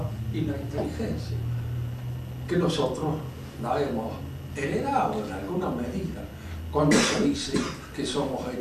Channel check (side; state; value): both; identical; correlation 1.00